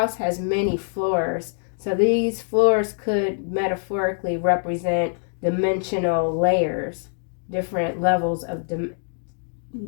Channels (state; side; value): silent; right; digital silence